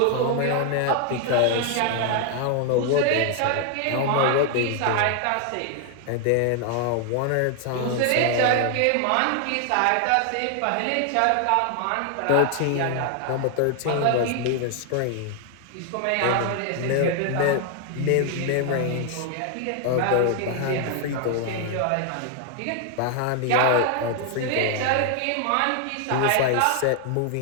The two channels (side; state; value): both; different; correlation 0.00